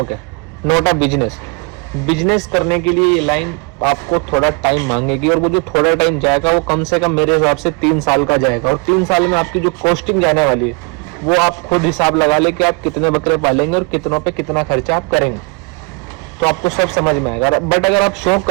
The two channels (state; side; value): quieter; left; 29.7 dB